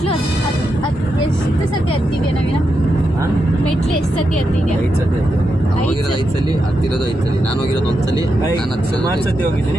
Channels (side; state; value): both; normal; correlation 0.85